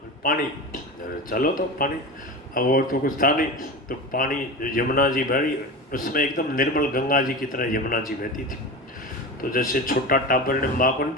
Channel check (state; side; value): normal; both; correlation 0.28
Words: पानी, चलो तो पानी। अब और तो कुछ था नहीं, तो पानी यमुना जी भरी, उसमें एकदम निर्मल गंगा जी की तरह यमुना जी बहती थी। तो जैसे छोटा टाबर ने माँ को